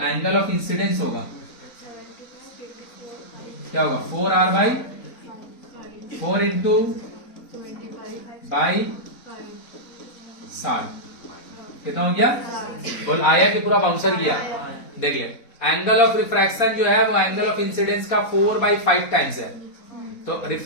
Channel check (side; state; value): right; late; 4.0 ms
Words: ऑफ इंसिडेंस होगा क्या होगा, 4R/4 इंटू बाई 60, कितना हो गया, बोल आया कि पूरा बाउंसर किया, देख ले एंगल ऑफ रिफ्रैक्शन जो है वो एंगल ऑफ इंसिडेंस का 4/5 टाइम्स है, तो